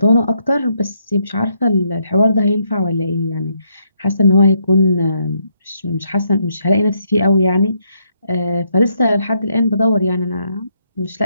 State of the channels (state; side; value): inverted; both; correlation -0.75